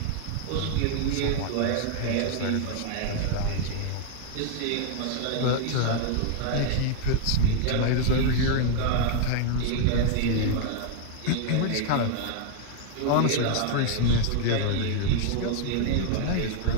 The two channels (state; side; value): different; both; correlation 0.00